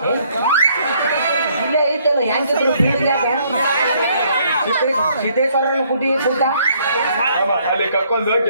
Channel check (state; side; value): inverted; both; correlation -0.66